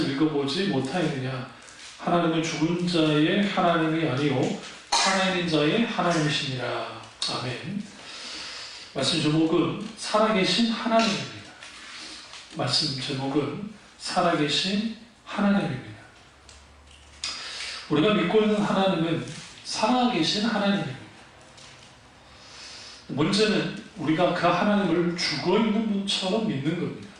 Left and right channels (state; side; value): identical; both; correlation 1.00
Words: 읽어보지 못하였느냐. 하나님은 죽은 자의 하나님이 아니요 살아있는 자의 하나님이시니라. 아멘. 말씀 제목은 살아계신 하나님입니다. 말씀 제목은 살아계신 하나님입니다. 우리가 믿고 있는 하나님은 살아계신 하나님입니다. 문제는 우리가 그 하나님을 죽어있는 분처럼 믿는 겁니다.